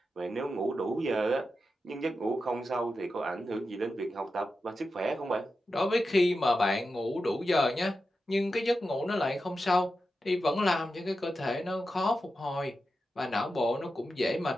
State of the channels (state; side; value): normal; both; correlation 0.90